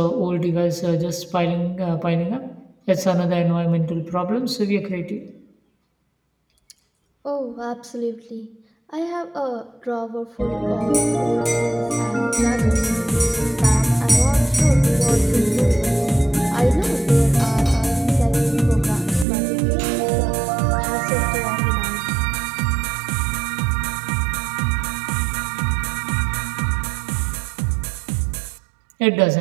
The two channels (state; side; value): drops out; left; at 19.2 s